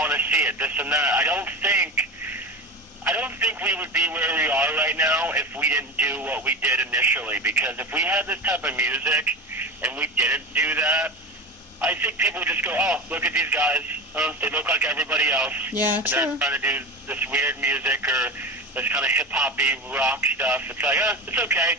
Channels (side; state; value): both; normal; correlation 0.27